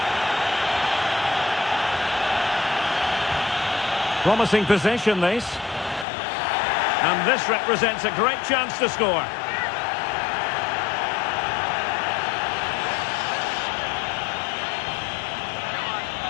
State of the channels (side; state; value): right; drops out; at 6.1 s